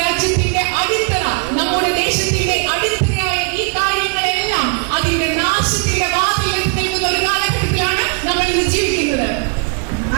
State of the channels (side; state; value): left; quieter; 37.3 dB